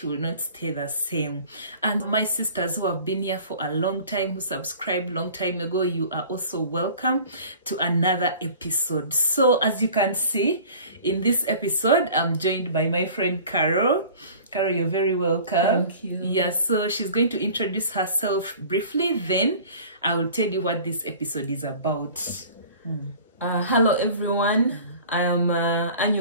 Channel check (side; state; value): both; inverted; correlation -0.45